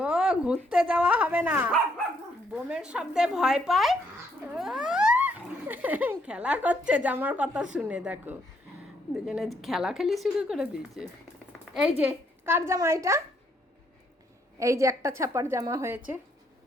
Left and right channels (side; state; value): both; normal; correlation 0.71